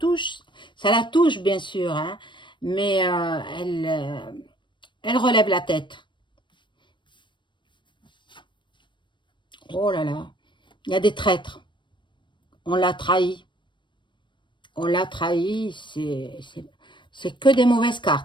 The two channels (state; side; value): late; right; 0.23 ms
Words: bien sûr, hein, mais elle relève la tête. Oh là là, il y a des traîtres, on l'a trahi, on l'a trahi, c'est que des mauvaises